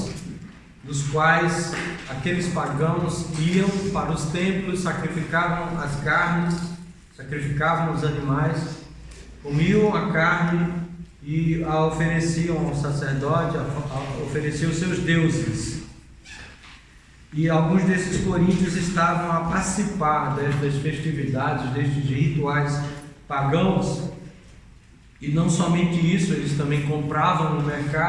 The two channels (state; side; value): identical; both; correlation 1.00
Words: nos quais aqueles pagãos iam para os templos, sacrificavam as carnes, sacrificavam os animais, comiam a carne e a ofereciam ao sacerdote, ofereciam aos seus deuses. E alguns desses coríntios estavam a participar destas festividades, destes rituais pagãos. E não somente isso, eles também compravam no